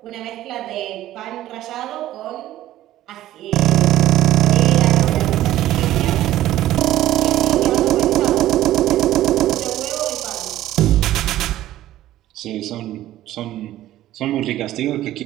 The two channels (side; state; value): left; quieter; 14.0 dB